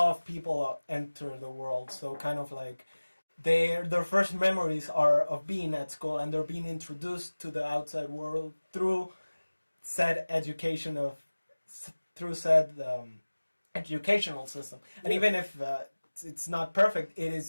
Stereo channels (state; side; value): inverted; both; correlation -1.00